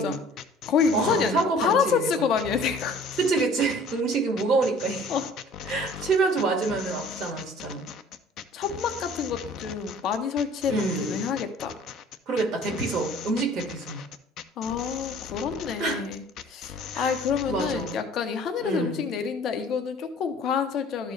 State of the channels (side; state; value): both; normal; correlation 0.50